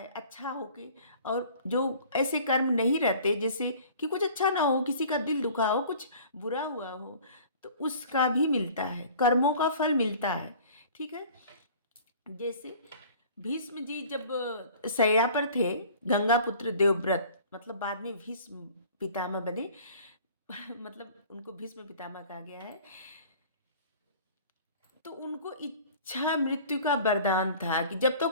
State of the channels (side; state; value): both; inverted; correlation -0.47